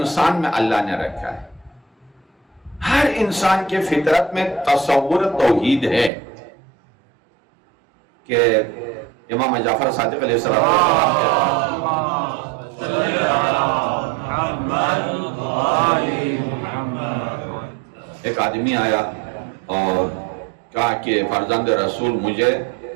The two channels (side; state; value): left; drops out; at 6.1 s